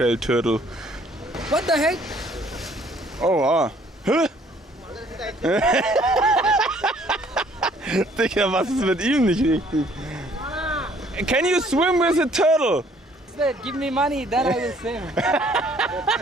What the heck? Oh, ah. Hä? Digga, was ist mit ihm nicht richtig? Can you swim with a turtle? Give me money, then I will swim.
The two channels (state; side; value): normal; both; correlation 0.60